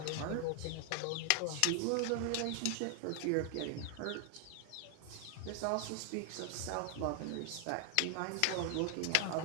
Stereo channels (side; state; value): both; different; correlation 0.00